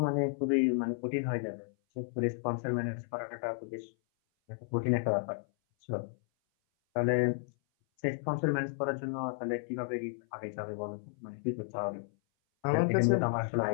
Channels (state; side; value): silent; right; 56 dB below the other